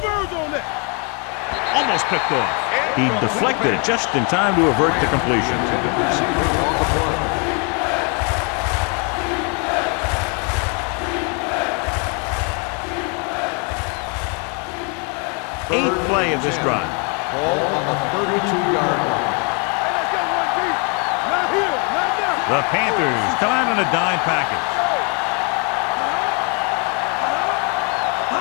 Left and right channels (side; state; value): right; quieter; 36.0 dB